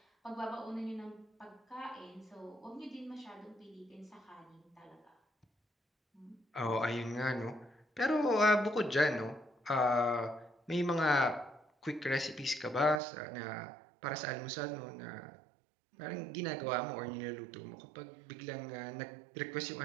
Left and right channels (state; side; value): drops out; left; at 13.0 s